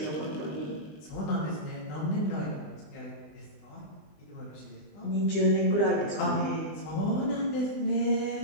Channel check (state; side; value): late; right; 20 ms